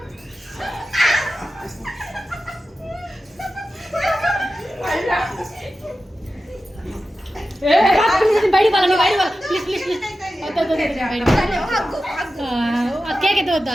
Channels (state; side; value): normal; both; correlation 0.93